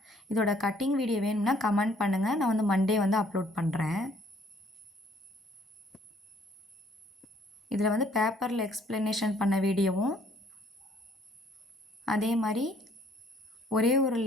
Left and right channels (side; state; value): both; normal; correlation 0.62